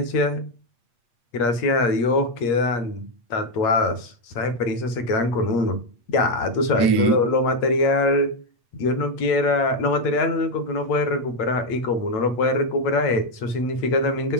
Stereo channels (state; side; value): late; right; 8.5 ms